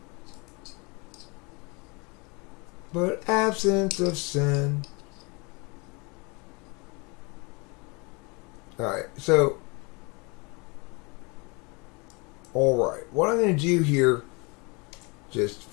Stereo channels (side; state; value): right; quieter; 29.4 dB